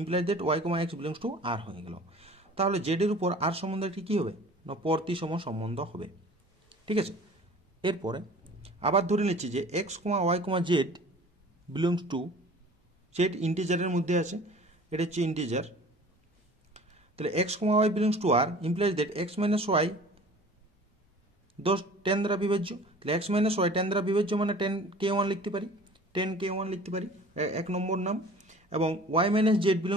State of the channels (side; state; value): both; normal; correlation 0.45